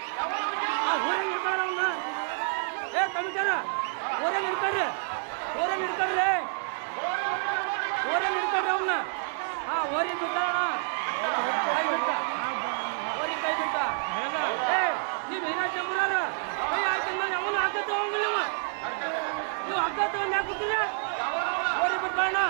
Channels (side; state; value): left; silent; 59 dB below the other